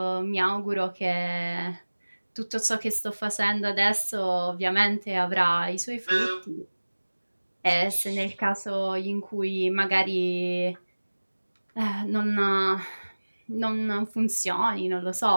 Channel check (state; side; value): inverted; both; correlation -1.00